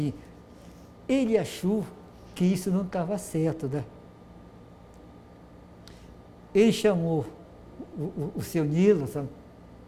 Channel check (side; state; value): both; identical; correlation 1.00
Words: Ele achou que isso não estava certo, né? Ele chamou o seu Nilo, sabe?